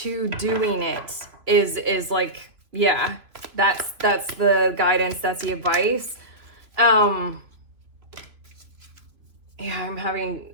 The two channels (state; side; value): late; left; 2.8 ms